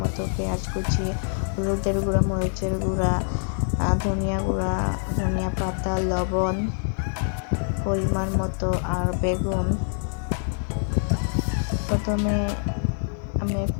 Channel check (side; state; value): right; silent; 62 dB below the other